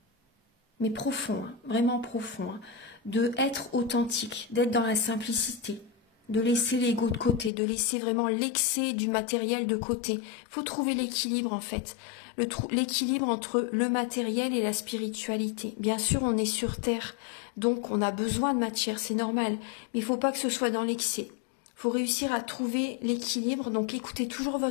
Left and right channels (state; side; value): drops out; right; at 7.5 s